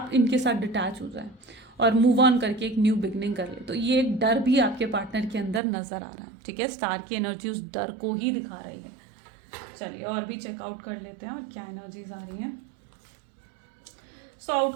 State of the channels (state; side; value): drops out; left; at 5.6 s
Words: इनके साथ डिटैच हो जाएं और मूव ऑन करके एक न्यू बिगनिंग कर ले। तो ये एक डर भी आपके पार्टनर के अंदर नजर आ रहा है। ठीक है, स्टार की एनर्जी उस डर को ही दिखा रही है। चलिए और भी चेकआउट कर लेते हैं और क्या एनर्जीज आ रही हैं। सो